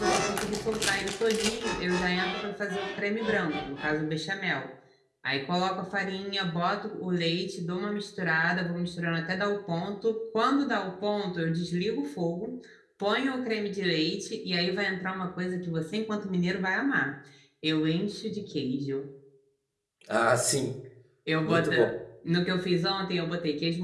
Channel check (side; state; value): both; identical; correlation 1.00